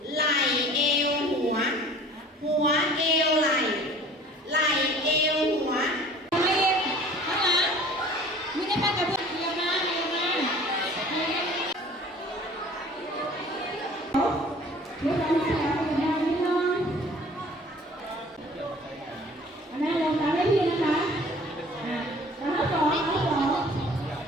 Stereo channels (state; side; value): normal; both; correlation 0.48